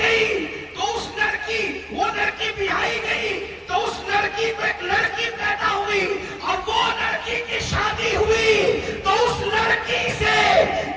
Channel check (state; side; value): identical; both; correlation 1.00